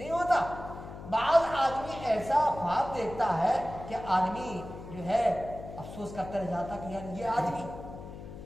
ہوتا؟ بعض آدمی ایسا خواب دیکھتا ہے کہ آدمی جو ہے افسوس کرتا رہ جاتا کہ یار یہ آدمی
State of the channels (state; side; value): noise; left; hum, 12 dB below the sound